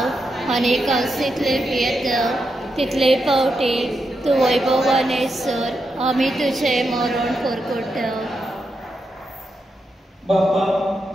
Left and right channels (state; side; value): normal; both; correlation 0.85